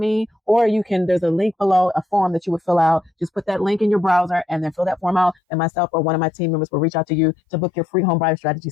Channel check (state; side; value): drops out; right; at 5.4 s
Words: or there's a link below, a form that you would fill out. Just put that link in your browser and then fill that form out, and myself or one of my team members will reach out to you to book your free home buyer strategy